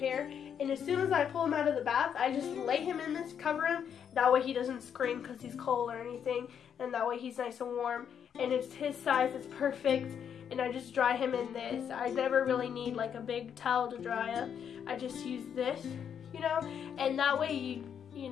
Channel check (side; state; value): right; quieter; 8.1 dB